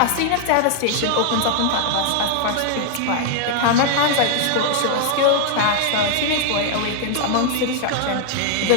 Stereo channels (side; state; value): both; different; correlation 0.00